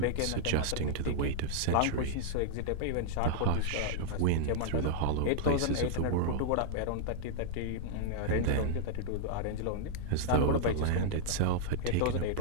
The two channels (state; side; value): different; both; correlation 0.00